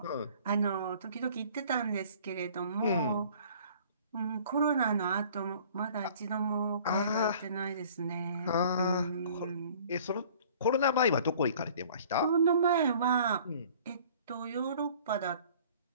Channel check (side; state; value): both; inverted; correlation -0.52